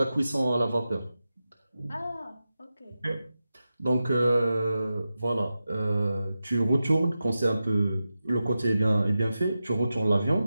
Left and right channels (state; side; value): inverted; both; correlation -0.92